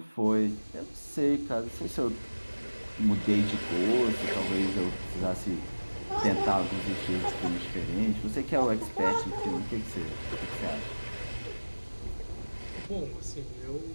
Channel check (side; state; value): both; inverted; correlation -1.00